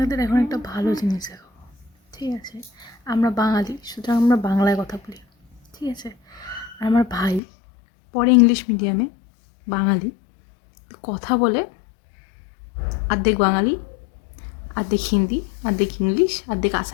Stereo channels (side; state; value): right; drops out; at 7.4 s